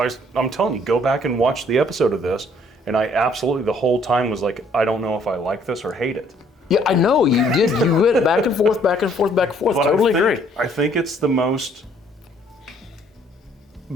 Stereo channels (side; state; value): both; normal; correlation 0.62